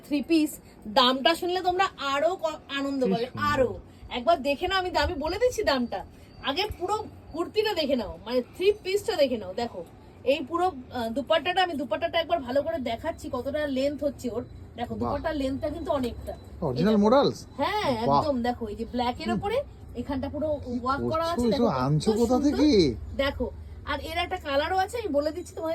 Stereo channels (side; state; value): both; identical; correlation 1.00